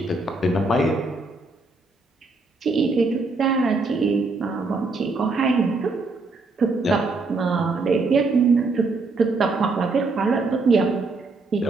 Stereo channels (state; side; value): quieter; left; 3.6 dB